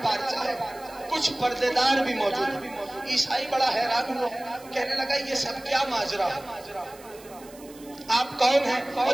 پارچہ ہے، کچھ پردے دار بھی موجود ہیں۔ عیسائی بڑا حیران ہوا، کہنے لگا یہ سب کیا ماجرا ہے، آپ کون ہیں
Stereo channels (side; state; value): right; noise; hiss, 22 dB below the sound